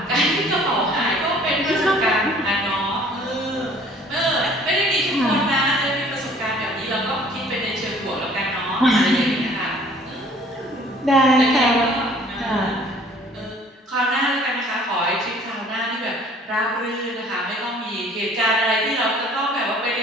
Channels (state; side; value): normal; both; correlation 0.54